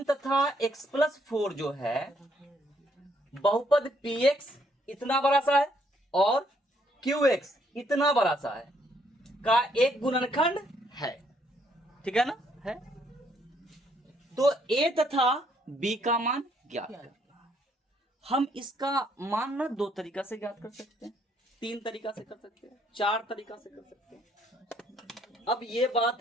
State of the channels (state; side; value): normal; both; correlation 0.69